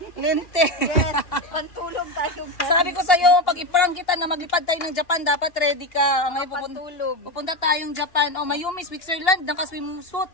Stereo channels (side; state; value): right; late; 2.9 ms